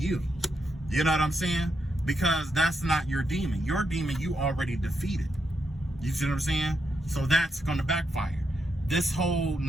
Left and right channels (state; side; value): normal; both; correlation 0.83